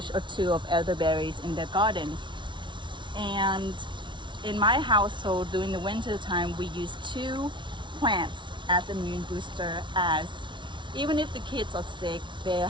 or two of elderberries in their gardens. And in my household, during the winter time, we use two plants as immune booster. As even if the kids are sick, they're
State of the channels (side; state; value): left; late; 0.24 ms